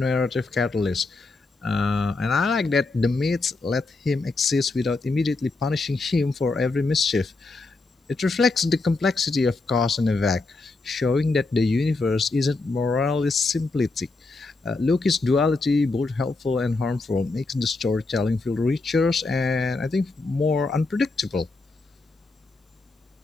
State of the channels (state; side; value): quieter; right; 3.5 dB